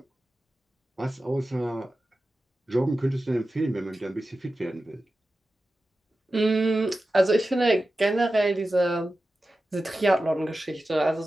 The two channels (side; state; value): both; normal; correlation 0.93